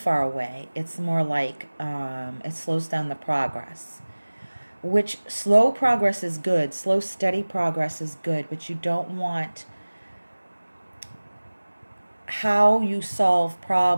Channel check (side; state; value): both; inverted; correlation -1.00